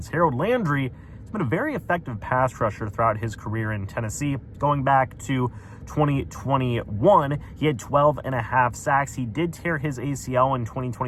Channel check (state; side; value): identical; both; correlation 1.00